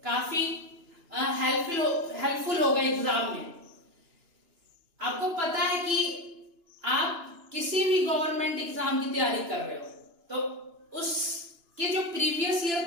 काफी हेल्पफुल होगा एग्जाम में। आपको पता है कि आप किसी भी गवर्नमेंट एग्जाम की तैयारी कर रहे हो तो उसके जो प्रीवियस ईयर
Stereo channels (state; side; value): late; left; 2.9 ms